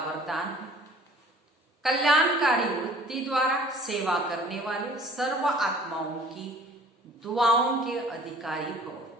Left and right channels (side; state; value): both; normal; correlation 0.51